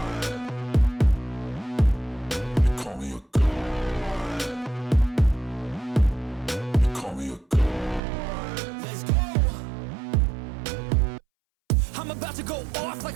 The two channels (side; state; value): left; drops out; at 8.0 s